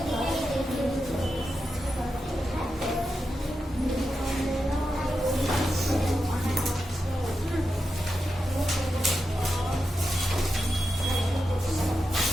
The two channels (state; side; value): normal; both; correlation 0.89